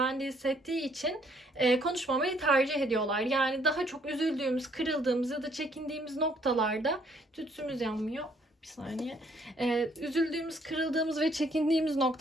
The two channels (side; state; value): both; normal; correlation 0.66